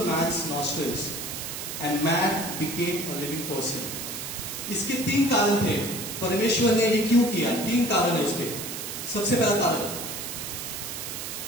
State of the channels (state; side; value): noise; right; hiss, 6 dB below the sound